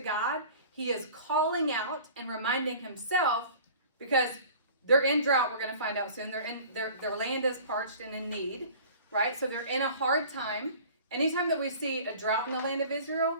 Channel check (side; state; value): both; inverted; correlation -0.44